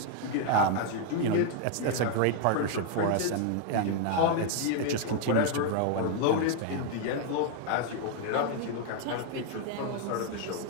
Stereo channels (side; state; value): both; different; correlation 0.00